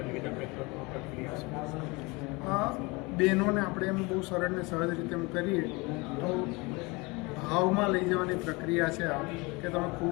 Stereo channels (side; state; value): right; quieter; 25.8 dB